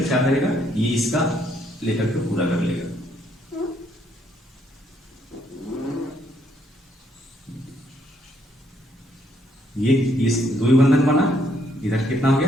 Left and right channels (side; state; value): both; normal; correlation 0.71